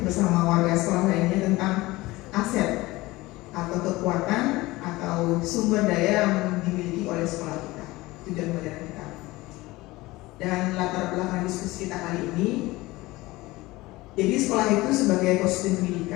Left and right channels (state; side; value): quieter; right; 20.1 dB